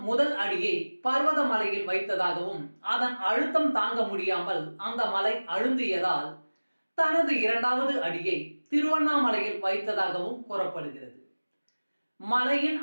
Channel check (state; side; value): inverted; both; correlation -1.00